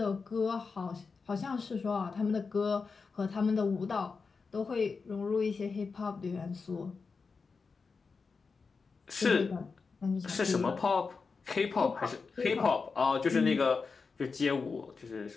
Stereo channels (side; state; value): right; quieter; 4.8 dB